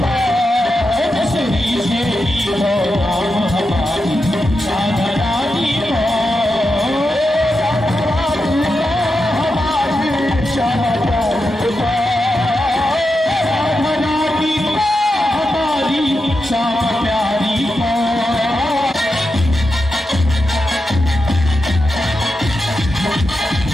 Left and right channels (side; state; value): both; normal; correlation 0.88